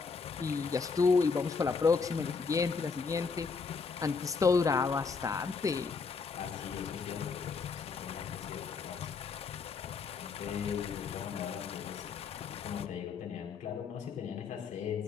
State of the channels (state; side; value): quieter; right; 5.0 dB